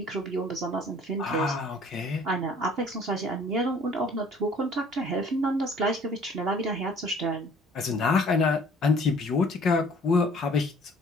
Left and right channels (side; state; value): both; normal; correlation 0.55